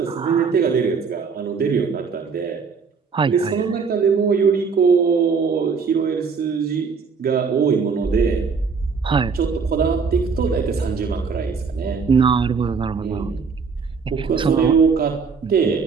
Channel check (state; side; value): quieter; left; 5.4 dB